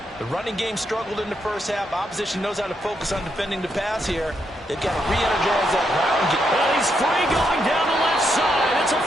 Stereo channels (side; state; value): both; normal; correlation 0.80